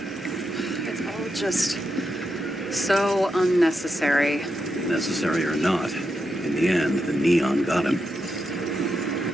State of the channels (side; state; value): both; normal; correlation 0.85